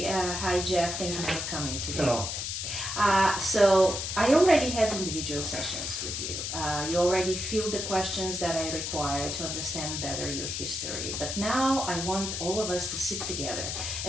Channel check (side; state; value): left; noise; hiss, 3 dB below the sound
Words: Hi, Jeff. Thank you for coming today. Hello. So I already had individual sessions with you. You already feel the questions that I require to understand better your history. But now I want all of us to sit together